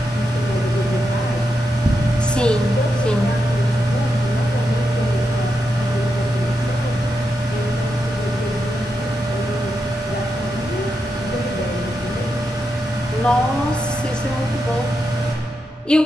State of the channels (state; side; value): normal; both; correlation 0.85